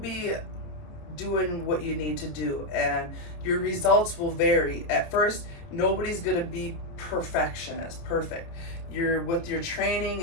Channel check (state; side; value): late; right; 29 ms